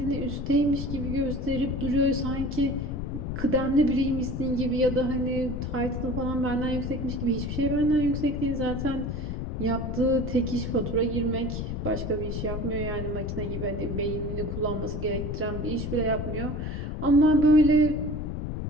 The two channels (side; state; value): left; noise; rumble, 4 dB below the sound